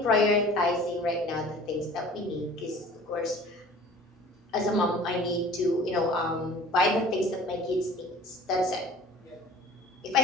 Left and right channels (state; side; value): normal; both; correlation 0.46